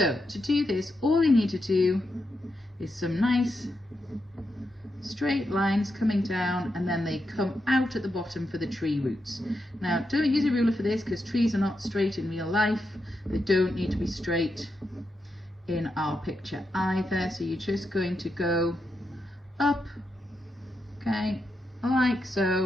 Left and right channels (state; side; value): normal; both; correlation 0.85